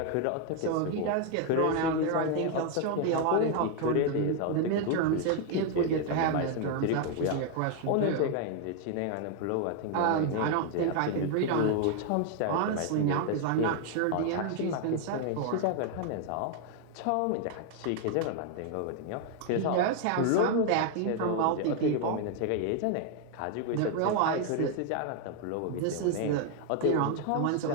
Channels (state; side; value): different; both; correlation 0.00